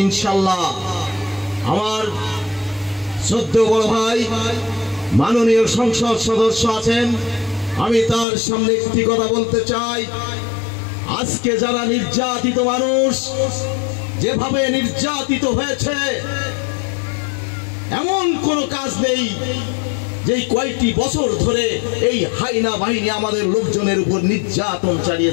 ইনশাআল্লাহ। আমার শ্রদ্ধেয় বড় ভাই মাননীয় সংসদ সদস্য আছেন, আমি তার সামনে একটি কথা বলতে চাই। আজকে যারা নির্যাতিত মানুষ যেভাবে নির্যাতিত হয়েছে, এমন কোনো কাজ নেই যেই কয়েকটি বছর ধরে এই হাইনা বাহিনী আমাদের লোকজনের উপর নির্যাতন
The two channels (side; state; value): right; drops out; at 8.2 s